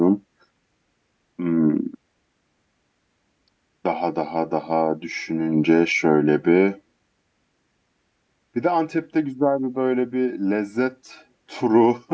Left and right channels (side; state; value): both; identical; correlation 1.00